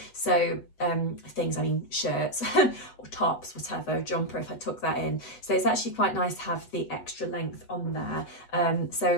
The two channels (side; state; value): right; late; 8.1 ms